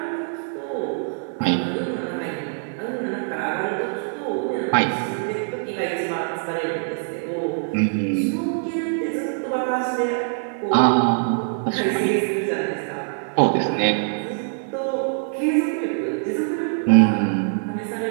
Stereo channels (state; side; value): silent; left; digital silence